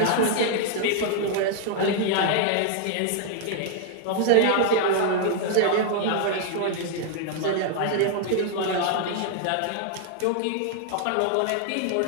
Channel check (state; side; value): different; both; correlation 0.00